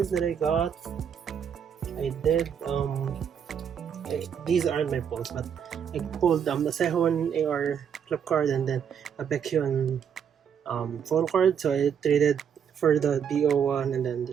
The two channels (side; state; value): left; quieter; 7.9 dB